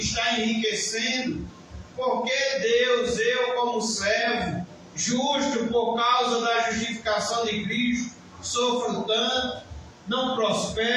enriquecendo? Por que, Deus, eu como servo, justo por causa da justificação de Cristo, sofro tanto, não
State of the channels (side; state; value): both; identical; correlation 1.00